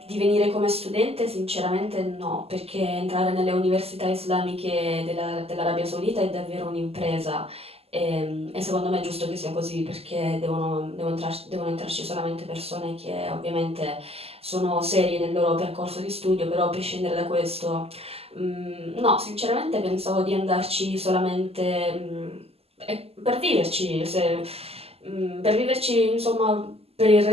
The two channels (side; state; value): left; late; 0.29 ms